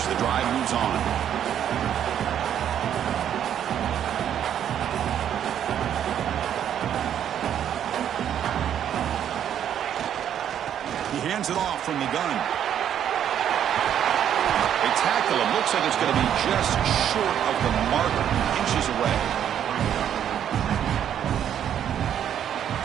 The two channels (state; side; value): quieter; left; 9.7 dB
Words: The drive moves on. He hands it off from the gun. They tackle him. Looks like it's going to be just short of the marker. Inches away.